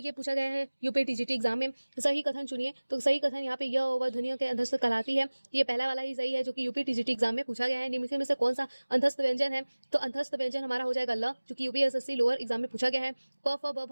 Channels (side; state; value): both; inverted; correlation -1.00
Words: पूछा गया है यूपी टीजीटी एग्जाम में। सही कथन चुनिए, तो सही कथन यहाँ पे य व ध्वनियों के अंतस्थ कहलाती है। ये पहला वाला ही सही है, जो कि यूपी टीजीटी एग्जाम में पूछा गया है। निम्न में से कौन सा अंतस्थ व्यंजन है? तो अंतस्थ व्यंजन हमारा हो जाएगा ल, जो कि यूपी एसएससी लोअर एग्जाम में पूछा गया है। प फ ब